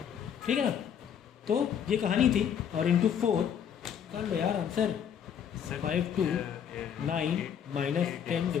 ठीक है ना। तो ये कहानी थी, और इंटू 4 कर लो यार answer, 5 to 9 minus 10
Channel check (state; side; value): quieter; right; 8.4 dB